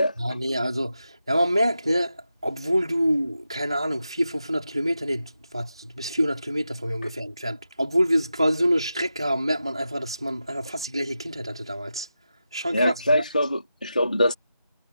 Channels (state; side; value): inverted; both; correlation -0.90